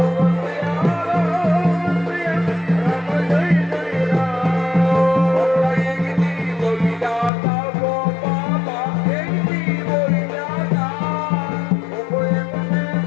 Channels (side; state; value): right; drops out; at 7.3 s